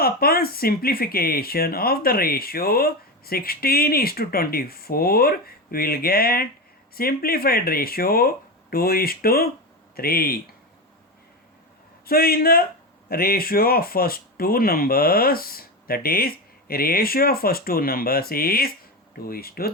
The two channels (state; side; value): normal; both; correlation 0.18